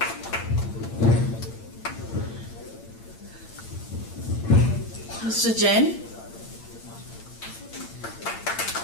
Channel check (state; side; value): late; right; 8.8 ms